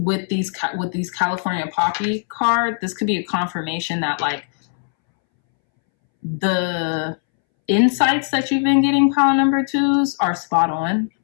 these California Poppy card. This could be a confirmation that like the insights that you've been getting, pile number twos, are spot on.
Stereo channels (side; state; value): right; silent; 65 dB below the other